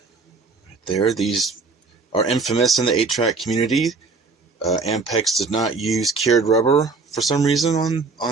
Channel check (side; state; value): left; quieter; 4.2 dB